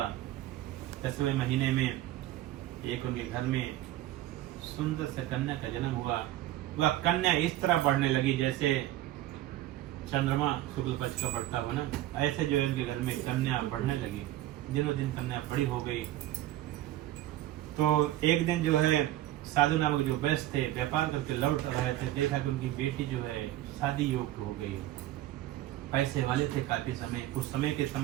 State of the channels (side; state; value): left; quieter; 14.6 dB